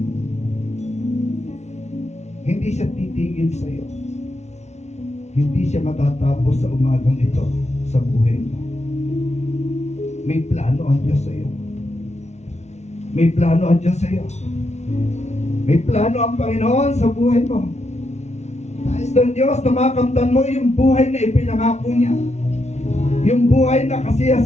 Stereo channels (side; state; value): right; late; 0.32 ms